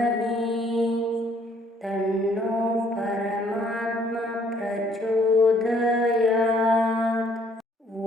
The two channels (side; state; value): both; normal; correlation 0.64